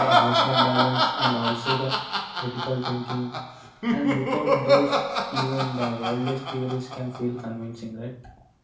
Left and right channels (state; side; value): identical; both; correlation 1.00